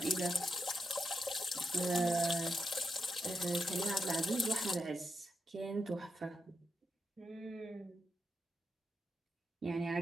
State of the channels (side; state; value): both; normal; correlation 0.85